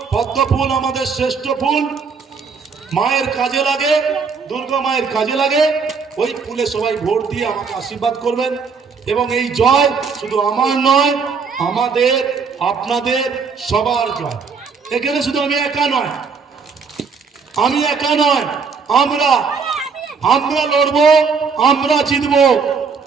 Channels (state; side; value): quieter; left; 5.4 dB